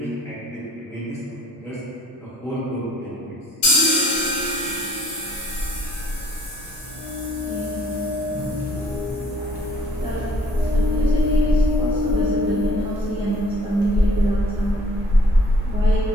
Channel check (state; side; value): normal; both; correlation 0.59